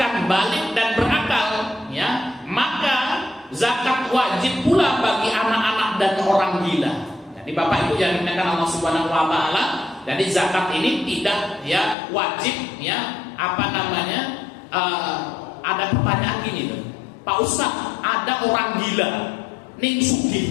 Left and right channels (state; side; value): drops out; right; at 12.0 s